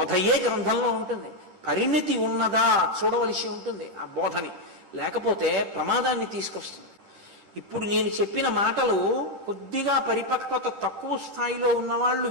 గ్రంథంలో ఉంటుంది, పరిణతి ఉన్నదా చూడవలసి ఉంటుంది ఆ బోధని, లేకపోతే ప్రమాదాన్ని తీసుకొస్తుంది. ఇప్పుడు నేను చెప్పిన మాటలు కొద్దిగా పరిపక్వత తక్కువ స్థాయిలో ఉన్నవాళ్ళు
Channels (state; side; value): late; left; 10 ms